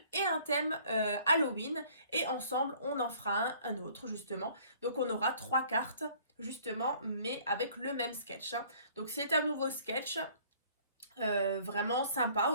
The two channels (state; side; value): inverted; both; correlation -0.56